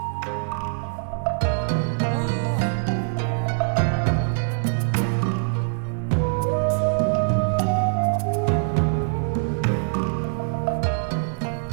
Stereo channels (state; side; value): silent; left; digital silence